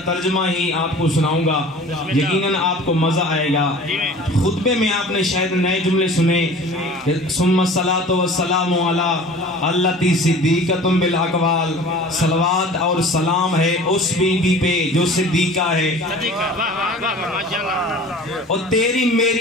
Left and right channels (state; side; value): normal; both; correlation 0.43